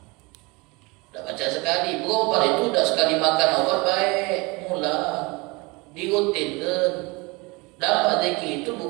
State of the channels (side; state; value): left; quieter; 26.2 dB